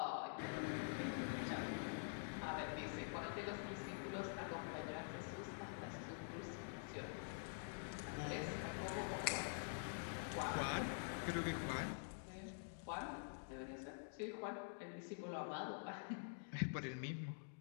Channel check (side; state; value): right; silent; digital silence